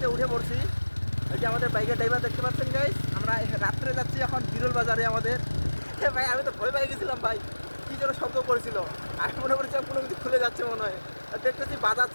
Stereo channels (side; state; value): both; inverted; correlation -1.00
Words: উঠে পড়ছি। এই যে আমাদের বাইকের ড্রাইভার দেখতে পাচ্ছেন গাইস, আমরা রাত্রে যাচ্ছি এখন বিরল বাজারে আমাদের। ভাই আমি তো ভয় পেয়ে গেছিলাম ভাই, কি যেন শব্দ করেছিল, আমি মনে করছিলাম কোনো কিছু খুলে যাচ্ছে মনে হয়। আর দেখতেছি